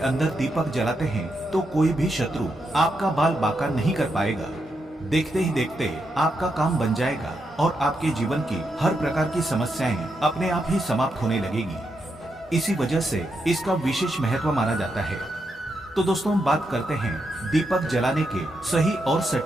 अंदर दीपक जलाते हैं तो कोई भी शत्रु आपका बाल बांका नहीं कर पाएगा। देखते ही देखते आपका काम बन जाएगा और आपके जीवन की हर प्रकार की समस्याएं अपने आप ही समाप्त होने लगेगी। इसी वजह से इसका विशेष महत्व माना जाता है। तो दोस्तों, बात करते हैं दीपक जलाने के सही और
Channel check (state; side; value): normal; both; correlation 0.83